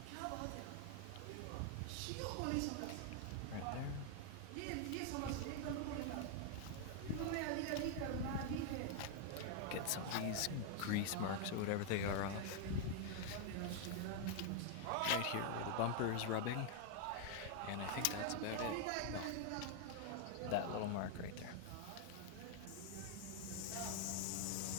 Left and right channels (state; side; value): different; both; correlation 0.00